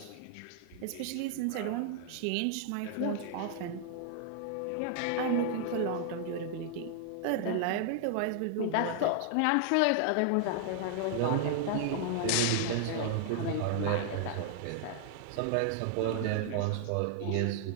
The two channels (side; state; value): both; different; correlation 0.00